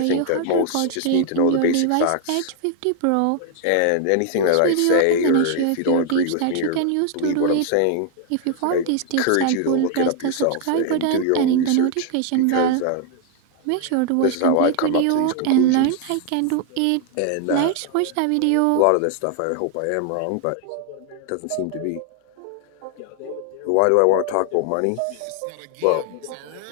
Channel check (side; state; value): both; different; correlation 0.00